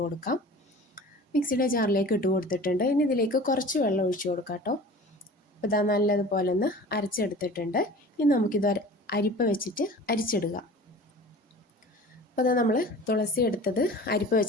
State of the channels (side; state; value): both; normal; correlation 0.41